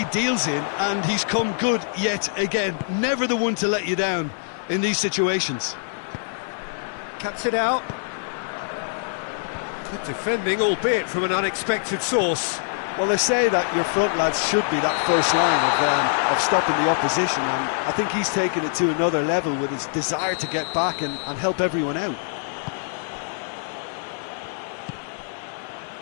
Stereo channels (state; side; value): silent; right; digital silence